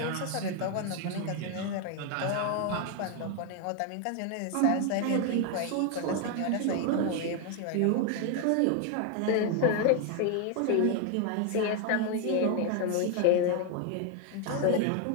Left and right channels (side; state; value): both; different; correlation 0.01